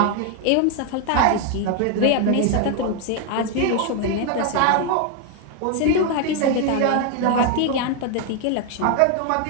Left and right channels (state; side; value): different; both; correlation 0.01